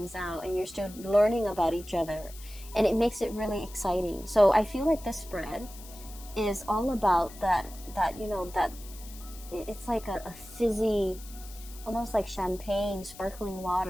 out, and you're still learning about each other, and it makes it really exciting. So I feel like this spread is all about that you know, that it's like a fizzy, almost like champagne, sparkling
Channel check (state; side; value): noise; left; hiss, 18 dB below the sound